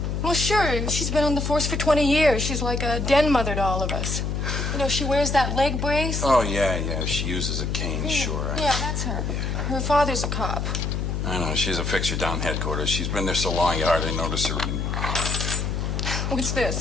Well, sure. She's been on the force for 20 years. She's like a den mother to all of us. You know, she wears that leg brace. Oh, yeah. She uses a cane, sure. Yeah, that's her. Her father's a cop. I know. She's a fixture down headquarters. She's been there so long you hardly notice her. What's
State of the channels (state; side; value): noise; left; hum, 1 dB below the sound